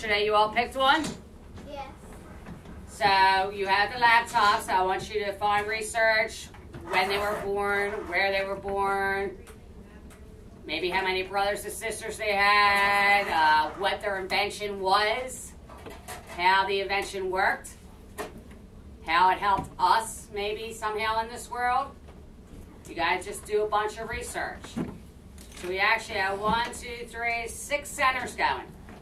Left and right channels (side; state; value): both; identical; correlation 1.00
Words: you all picked one? Yes. So you have the laptops. I want you to find research, when they were born, where they were born, maybe how many brothers and sisters they had, what their invention was, how the invention worked, how it helped us maybe somehow in this world. You guys just do a bunch of research. So we actually have 1, 2, 3, 6 centers going.